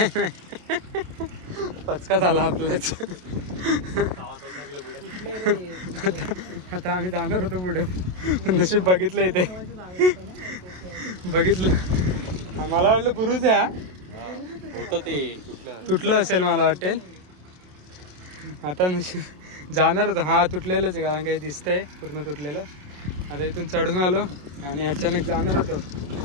नाही पचका झाला आपल्याच. आता आम्ही जाणार होतो पुढे, नशीब बघितलं इथे. बघितलं मला वाटलं बुरुज आहे ते तुटलं असेल मला वाटेल. आता नशीब जाणार होतं. हा तुटलेलंच आहे, कारण काही दिसतंय पूर्ण तुटलेलं. आता इथून चढून आलो आणि अचानक जाणार होतो,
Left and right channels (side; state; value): left; late; 27 ms